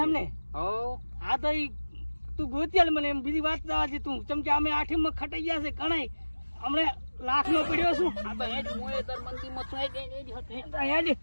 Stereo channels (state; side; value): inverted; both; correlation -1.00